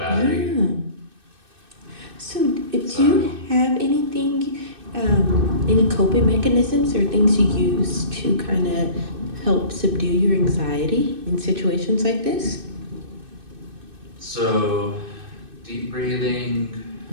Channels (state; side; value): late; left; 2.6 ms